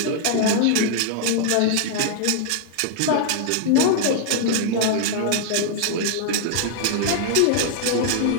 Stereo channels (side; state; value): both; different; correlation -0.01